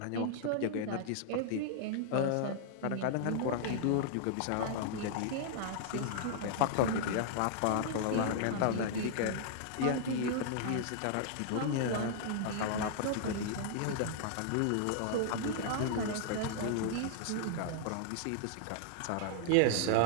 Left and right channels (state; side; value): different; both; correlation -0.01